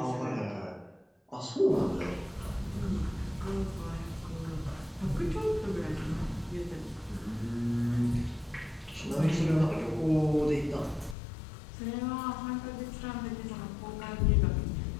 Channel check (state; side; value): drops out; right; at 11.2 s